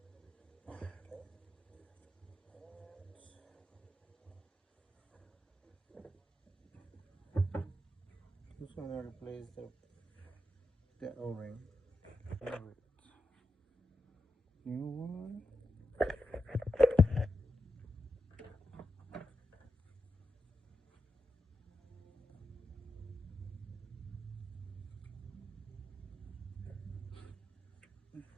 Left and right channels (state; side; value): normal; both; correlation 0.88